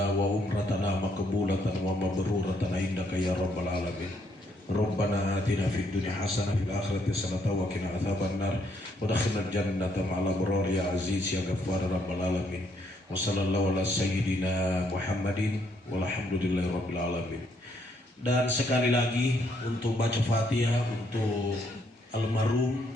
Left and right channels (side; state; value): both; normal; correlation 0.72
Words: wa umratana maqbulatan wa mabruratan indaka ya rabbal alamin. Rabbana atina fid dunya hasanah fil akhirati hasanah wa qina adzabannar wa adkhilnal jannata ma'al abrar ya aziz ya ghaffar rabbal alamin. Wa sallallahu ala sayyidina Muhammadin walhamdulillahi rabbil alamin. Dan sekali lagi untuk baca Fatihah untuk almarhum